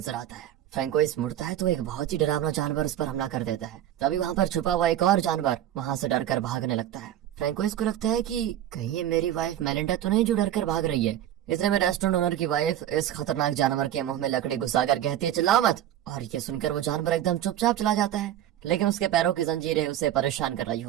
आता है। फ्रैंकोइस मुड़ता है तो एक बहुत ही डरावना जानवर उस पर हमला कर देता है। तभी वहाँ पर छुपा हुआ एक और जानवर वहाँ से डरकर भागने लगता है। फ्रैंकोइस को लगता है कि कहीं ये मेरी वाइफ मेलिंडा तो नहीं जो डरकर भाग रही है। इतने में रेस्टोरेंट ओनर की वाइफ इस खतरनाक जानवर के मुंह में लकड़ी घुसाकर कहती है चिल्लाओ मत, और ये सुनकर वो जानवर एकदम चुपचाप चला जाता है। लेकिन उसके पैरों की जंजीरें उसे परेशान कर रही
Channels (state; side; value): quieter; left; 11.8 dB